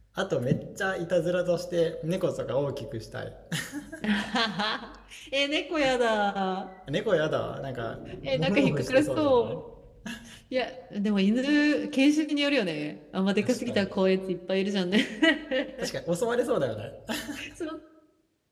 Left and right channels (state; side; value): identical; both; correlation 1.00